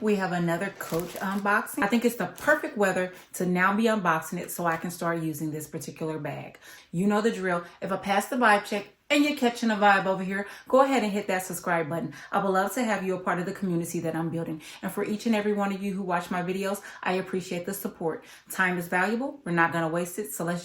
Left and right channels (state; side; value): identical; both; correlation 1.00